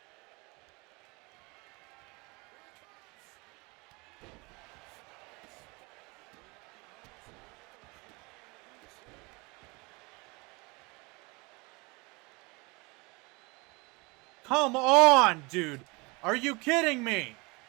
Come on, dude. Are you kidding me?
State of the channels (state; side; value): quieter; left; 26.7 dB